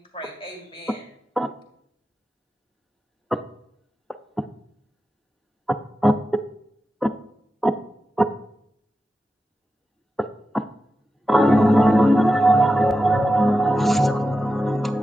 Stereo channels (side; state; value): both; normal; correlation 0.91